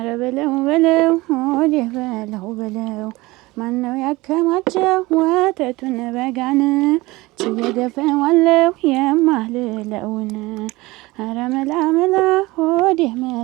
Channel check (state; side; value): quieter; left; 21.0 dB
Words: በለው በለው ሆዴ በለው በለው ማነው ያከማቸው ወተቱን በጋን ችየገፈዋለሁ የማልለውን ኧረ መላ መላ ሆዴ